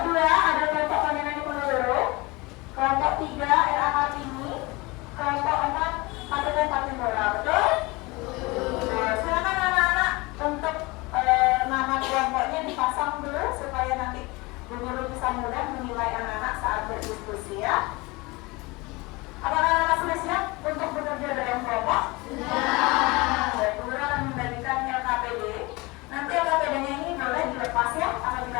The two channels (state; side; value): quieter; right; 24.1 dB